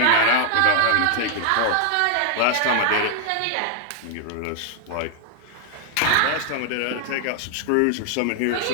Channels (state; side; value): different; both; correlation 0.00